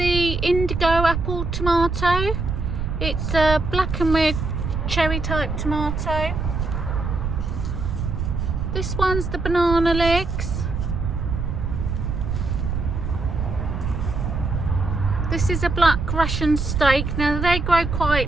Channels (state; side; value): noise; right; rumble, 2 dB below the sound